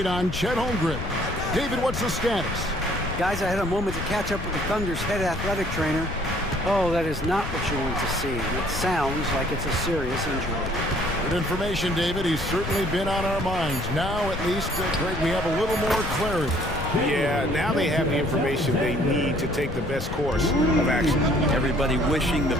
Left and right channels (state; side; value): noise; left; rumble, 7 dB below the sound